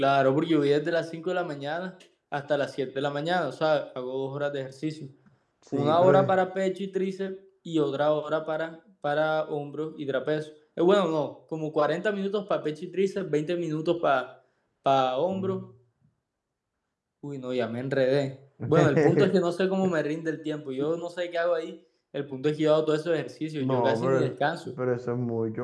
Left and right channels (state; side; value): identical; both; correlation 1.00